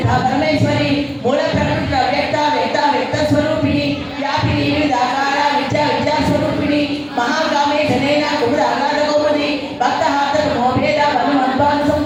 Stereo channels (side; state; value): both; identical; correlation 1.00